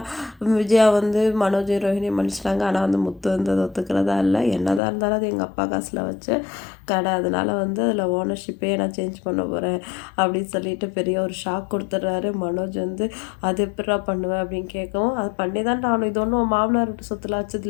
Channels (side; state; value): right; drops out; at 4.8 s